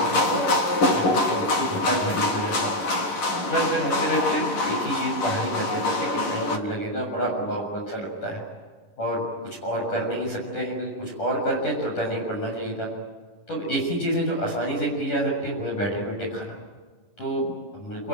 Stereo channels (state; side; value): late; right; 11 ms